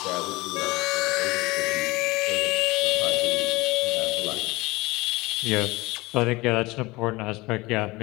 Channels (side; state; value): right; quieter; 21.8 dB